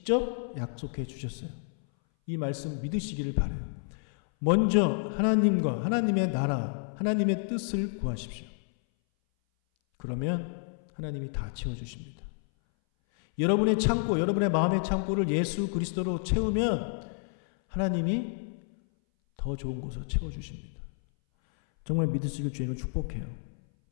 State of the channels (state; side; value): silent; right; 58 dB below the other